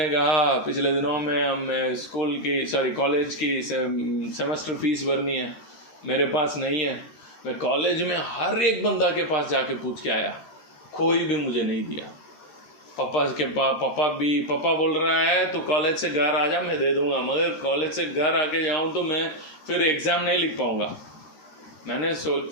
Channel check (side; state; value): right; late; 13 ms